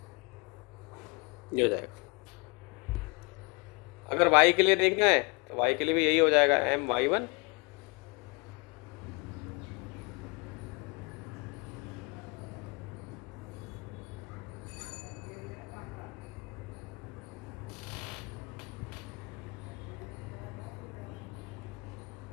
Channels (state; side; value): quieter; right; 30.5 dB